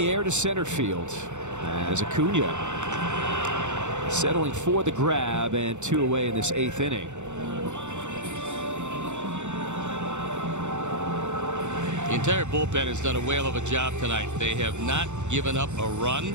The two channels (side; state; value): left; late; 0.84 ms